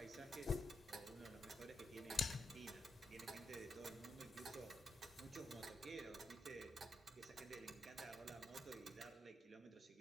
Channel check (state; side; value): normal; both; correlation 0.84